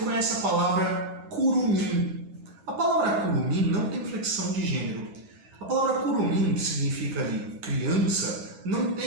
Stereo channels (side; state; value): left; late; 11 ms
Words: a palavra curumim. A palavra curumim não tem flexão de gênero. A palavra curumim, que significa ali criança, não